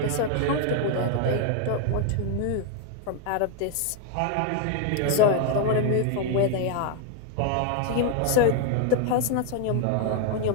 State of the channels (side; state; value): both; different; correlation 0.00